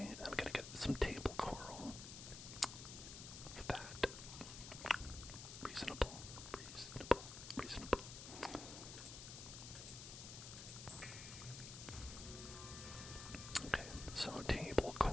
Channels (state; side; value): noise; left; hiss, 9 dB below the sound